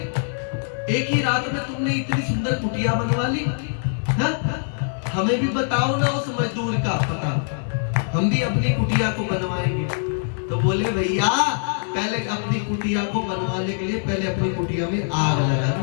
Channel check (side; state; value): right; silent; digital silence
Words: एक ही रात में तुमने इतनी सुंदर कुटिया बनवा ली, हाँ? हमें भी बताओ ना उस मजदूर का पता, हम भी अपनी कुटिया को बनवाएंगे। तो बोले भैया पहले अपनी कुटिया को बनवाने के लिए पहले अपनी कुटिया में आग